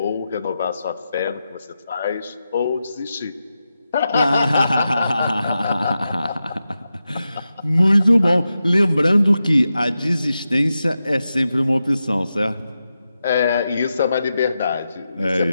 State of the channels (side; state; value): both; inverted; correlation -0.90